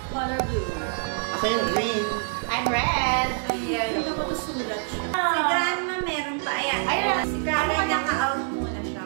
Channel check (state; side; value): silent; left; 57 dB below the other